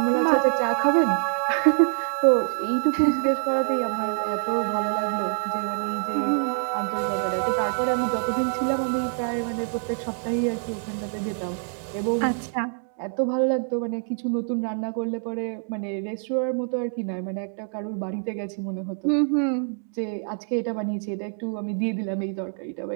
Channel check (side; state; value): left; silent; digital silence